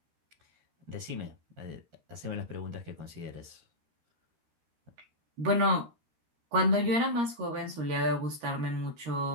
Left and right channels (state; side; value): late; left; 13 ms